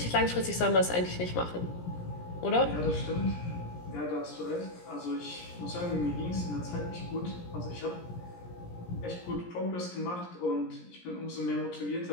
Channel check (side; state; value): right; late; 17 ms